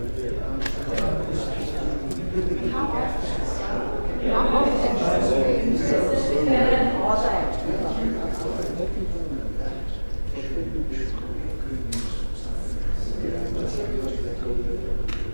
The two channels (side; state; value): both; inverted; correlation -1.00